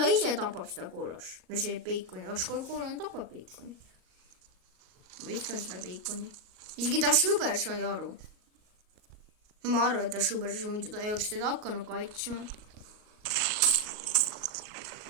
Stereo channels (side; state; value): left; late; 38 ms